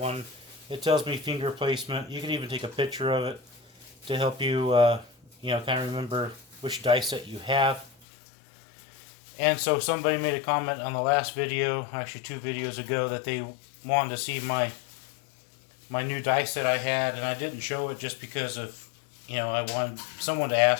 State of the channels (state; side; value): drops out; right; at 8.1 s